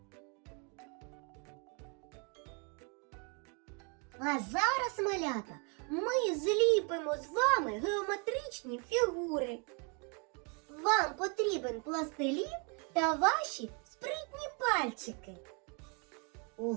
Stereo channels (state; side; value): quieter; left; 35.0 dB